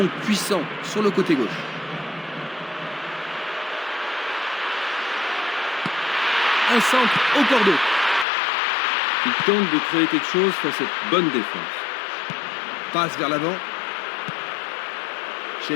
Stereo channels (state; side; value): drops out; right; at 8.2 s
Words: puissant sur le côté gauche. Un centre au cordeau. Il tente de créer quelque chose face à cette bonne défense. Passe vers l'avant.